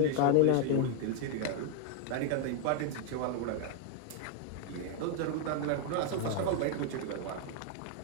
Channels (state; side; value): different; both; correlation 0.00